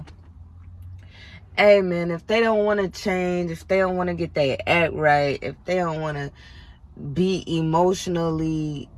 Hey, man, if they don't want to change, if they don't want to get their act right, if they don't want to be emotionally,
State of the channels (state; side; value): identical; both; correlation 1.00